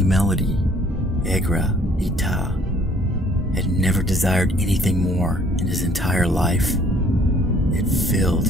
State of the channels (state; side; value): normal; both; correlation 0.59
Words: melody. Egra Ita had never desired anything more in his entire life. It filled